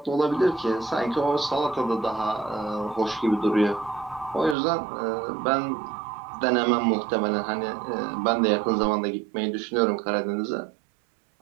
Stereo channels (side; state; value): left; drops out; at 4.5 s